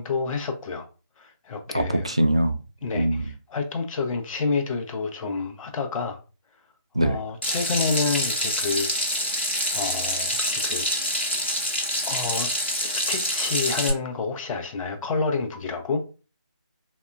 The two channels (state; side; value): inverted; both; correlation -0.47